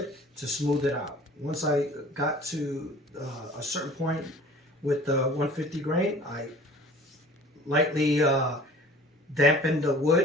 to smooth it out. Once I got to a certain point with the 150 grain, I lightly dampened the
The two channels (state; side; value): normal; both; correlation 0.46